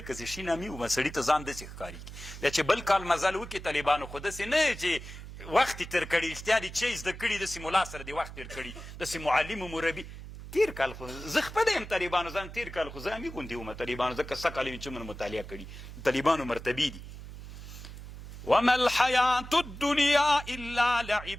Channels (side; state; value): right; noise; hum, 12 dB below the sound